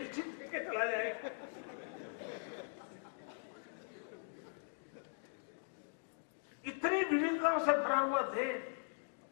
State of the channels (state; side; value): silent; right; digital silence